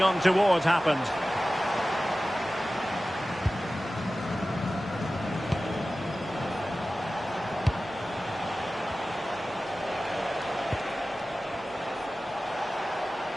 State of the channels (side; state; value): both; normal; correlation 0.96